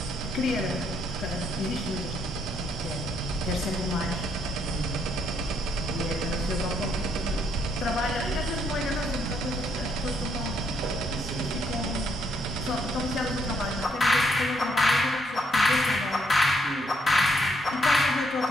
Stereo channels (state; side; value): normal; both; correlation 0.73